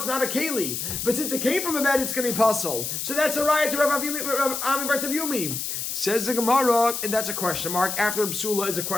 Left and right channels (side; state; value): left; noise; hiss, 4 dB below the sound